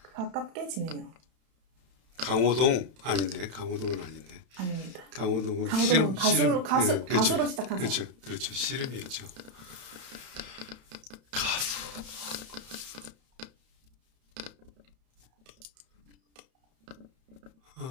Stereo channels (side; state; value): left; late; 31 ms